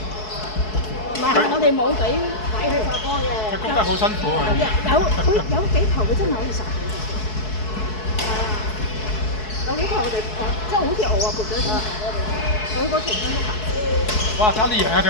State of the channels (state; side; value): late; right; 4.7 ms